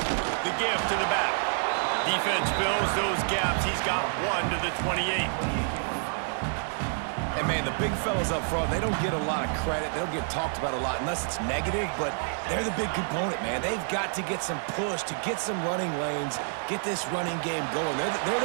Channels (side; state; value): left; silent; 59 dB below the other